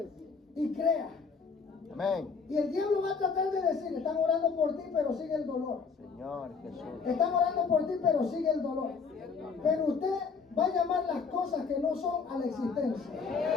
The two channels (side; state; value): right; quieter; 5.2 dB